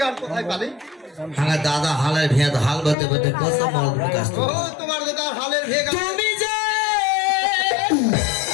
কোথায় পালে? আমার দাদা হালের ভেদ হাল বলতে বলতে কত মল বিকাশ। ও তোমার দাদা হালের ভেগ। তুমি যে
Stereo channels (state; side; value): drops out; right; at 3.0 s